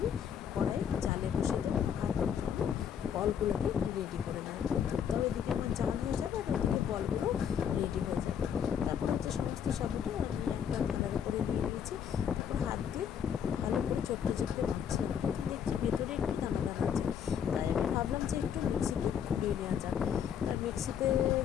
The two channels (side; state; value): right; quieter; 8.2 dB